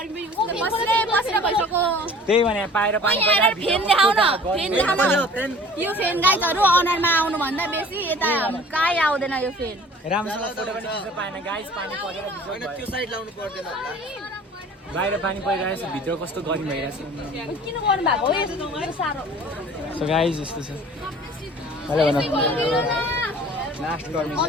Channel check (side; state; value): both; normal; correlation 0.47